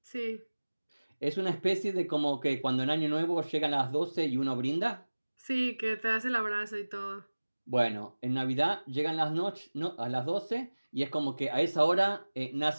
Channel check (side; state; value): both; inverted; correlation -1.00